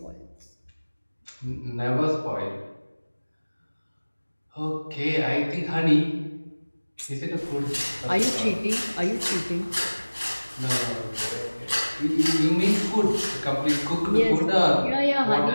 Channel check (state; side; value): inverted; both; correlation -1.00